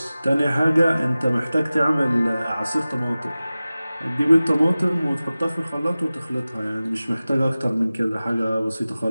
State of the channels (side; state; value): both; inverted; correlation -0.97